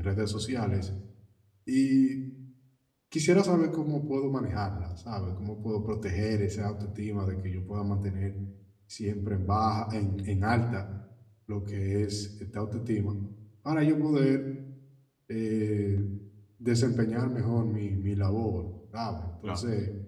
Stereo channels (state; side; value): identical; both; correlation 1.00